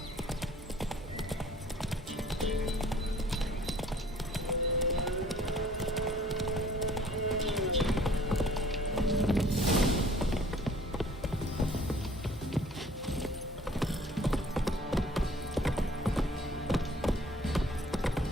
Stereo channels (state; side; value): normal; both; correlation 0.55